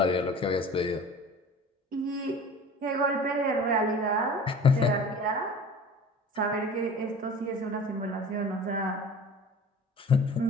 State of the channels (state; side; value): normal; both; correlation 0.41